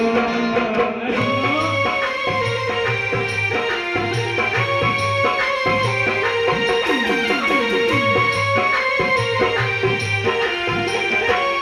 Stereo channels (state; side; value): identical; both; correlation 1.00